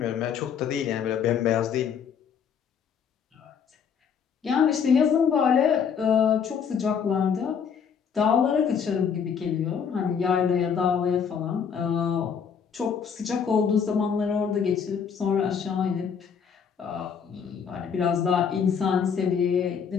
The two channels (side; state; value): right; quieter; 7.0 dB